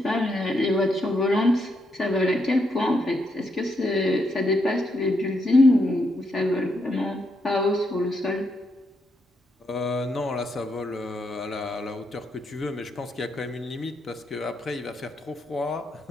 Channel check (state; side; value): normal; both; correlation 0.79